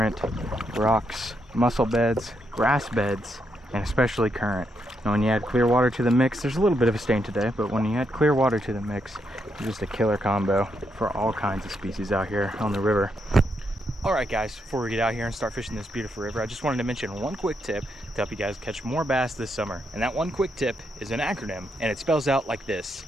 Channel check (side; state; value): both; normal; correlation 0.80